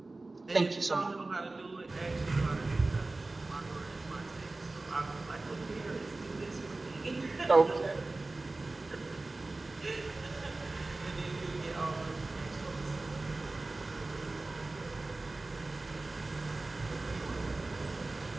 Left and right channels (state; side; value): quieter; left; 3.2 dB